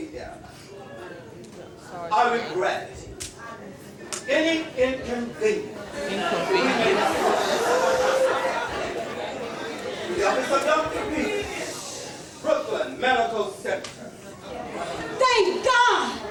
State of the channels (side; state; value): both; identical; correlation 1.00